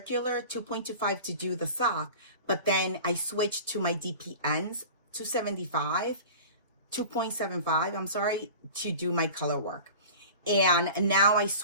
2.25 to do the sock, but then I switched to my DPNs 275, 2.75, I'm sorry, to do my color work. And now I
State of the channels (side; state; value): both; inverted; correlation -0.38